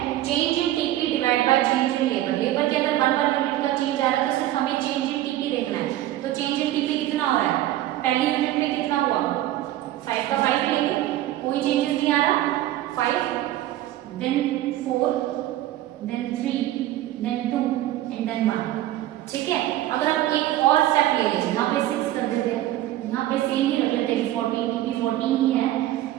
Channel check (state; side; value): quieter; left; 14.2 dB